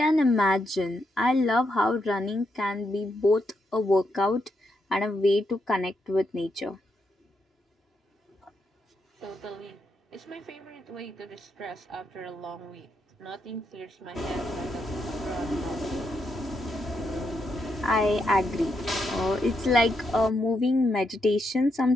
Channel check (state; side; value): normal; both; correlation 0.81